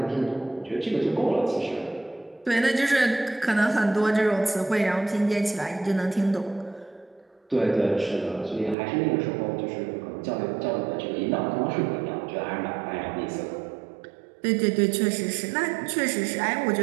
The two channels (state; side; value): drops out; left; at 8.8 s